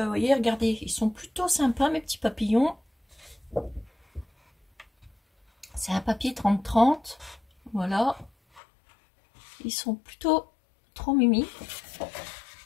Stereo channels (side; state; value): right; drops out; at 8.6 s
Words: voyez, regardez, ils sont plutôt sympas mes petits papillons. C'est un papier 30-30, voilà. Ils sont plutôt trop mimi.